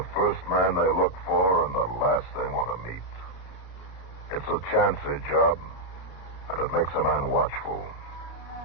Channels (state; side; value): late; right; 33 ms